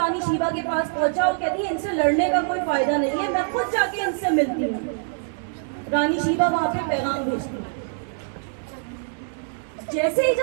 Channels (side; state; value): left; silent; 62 dB below the other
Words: شیبہ کے پاس پہنچا، وہ کہتی ہے ان سے لڑنے کا کوئی فائدہ نہیں ہے، میں خود جا کے ان سے ملتی ہوں۔ رانی شیبہ وہاں پہ پیغام بھیجتی ہے۔ جیسے ہی